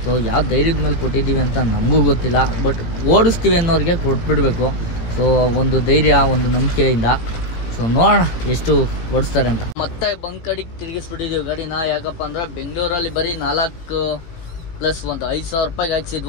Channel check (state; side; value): late; right; 18 ms